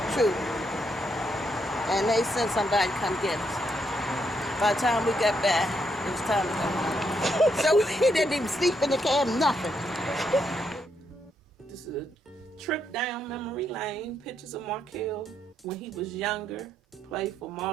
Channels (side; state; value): both; normal; correlation 0.77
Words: troop. And they sent somebody to come get us. By the time we got back, it was time to go home. So we didn't even sleep in the cab, nothing. This is a trip down memory lane. Pictures of Markelle when he was younger, played for